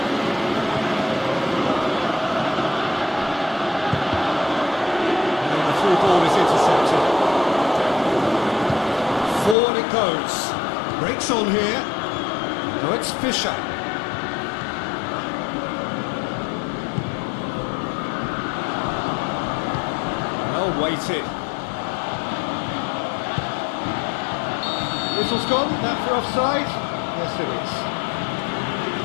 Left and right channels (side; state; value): right; drops out; at 9.6 s